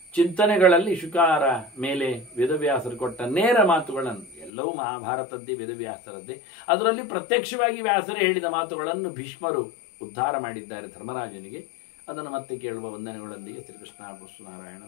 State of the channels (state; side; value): drops out; right; at 4.5 s